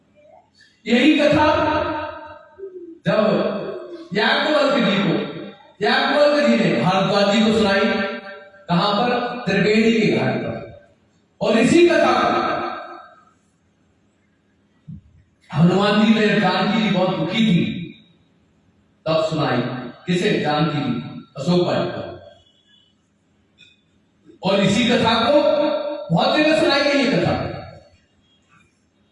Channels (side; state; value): both; identical; correlation 1.00